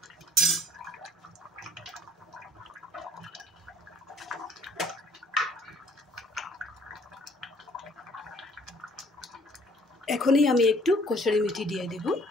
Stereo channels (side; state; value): both; normal; correlation 0.60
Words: এখনই আমি একটু কসুরি মেথি দিয়ে দেব।